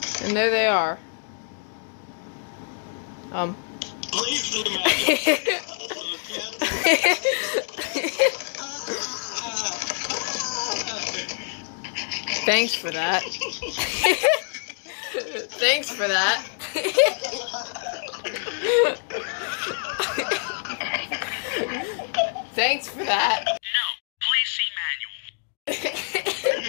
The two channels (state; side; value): silent; right; 61 dB below the other